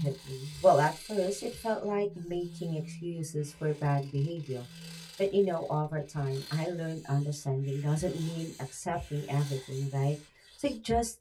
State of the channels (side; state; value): both; identical; correlation 1.00